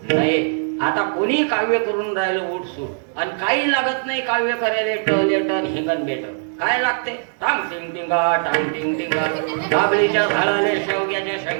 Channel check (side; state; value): left; silent; digital silence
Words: नये. आता कोणी काव्य करून राहिलं उठसूट आणि काही लागत नाही काव्य करायला. टन हिंगण बेटन काय लागते? टांग टिंग टिंगा, टांग टिंग टिंगा, काबळीच्या झाडाले शेवग्याच्या